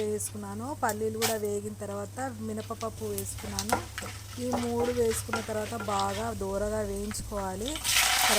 వేసుకున్నాను. పల్లీలు కూడా వేగిన తర్వాత మినపప్పు వేసుకున్నాను. ఈ మూడు వేసుకున్న తర్వాత బాగా దోరగా వేయించుకోవాలి.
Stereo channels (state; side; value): identical; both; correlation 1.00